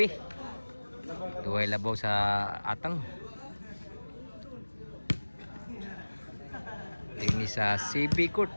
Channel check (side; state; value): both; inverted; correlation -1.00